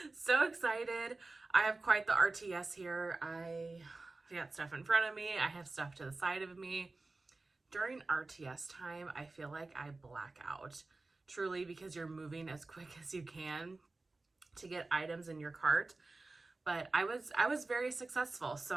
so excited. I have quite the RTS here. I got stuff in front of me. I have stuff to the side of me. During RTS time, I feel like I black out truly because you're moving as quick as you can to get items in your cart. But I was very successful. So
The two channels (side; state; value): left; quieter; 3.3 dB